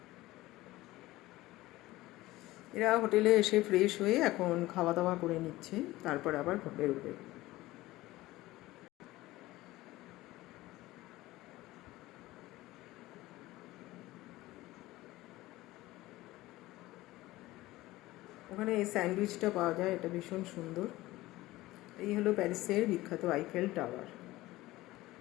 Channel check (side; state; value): right; quieter; 17.9 dB